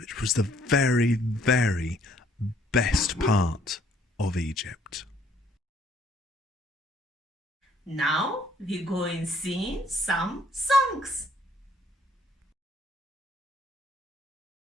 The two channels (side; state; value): both; normal; correlation 0.63